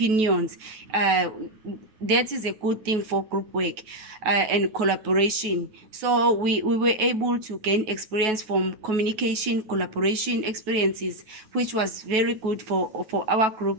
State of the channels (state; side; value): late; left; 9.3 ms